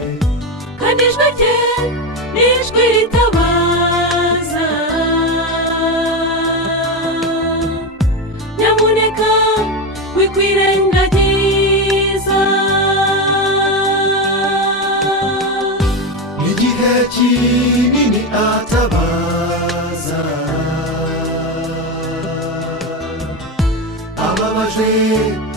kandi ijwi rye ni ijwi ritabaza. Nyamuneka wikwirengagiza, igihe kinini atabaza, ababajwe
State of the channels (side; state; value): both; normal; correlation 0.14